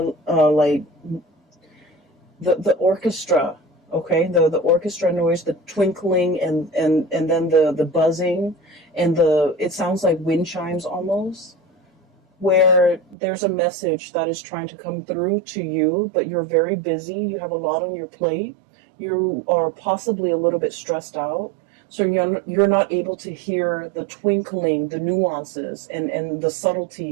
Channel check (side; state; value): left; drops out; at 13.2 s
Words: the orchestra, okay? The orchestra noise, the twinkling, and then the buzzing, and it sounds like wind chimes almost, where there's a message that is trying to come through to you, but you're very busy. You have a lot on your plate. You are possibly a little bit stressed out. So you're not able to hear the twinkling, the nuances, and the